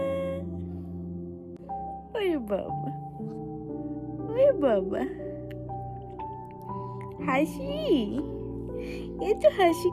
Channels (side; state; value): both; identical; correlation 1.00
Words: ওরে বাবা, ওরে বাবা, হাসি, এত হাসি